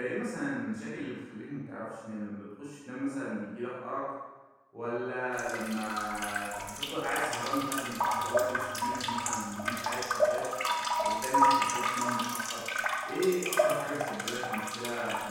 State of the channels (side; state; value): both; identical; correlation 1.00